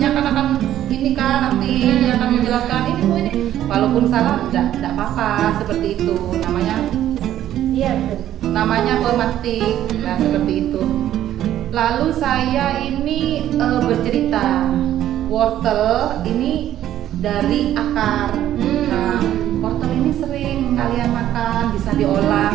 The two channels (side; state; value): left; quieter; 12.1 dB